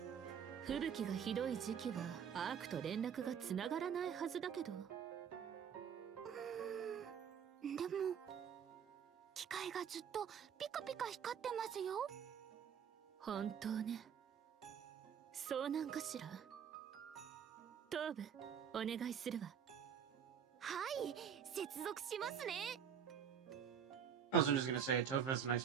吹雪がひどい時期はアークと連絡がつながらないはずだけど。でも機械がずっとピカピカ光ってますよ。本当ね。そうなんかしら。頭部お願いするわ。はい、接続しますね。I was just gonna say, Toph has a nice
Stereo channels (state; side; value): quieter; left; 8.0 dB